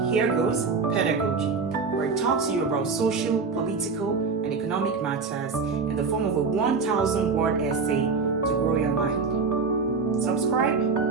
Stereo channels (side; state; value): left; quieter; 4.8 dB